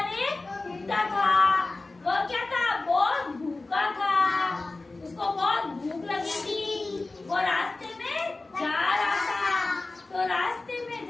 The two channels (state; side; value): quieter; right; 3.3 dB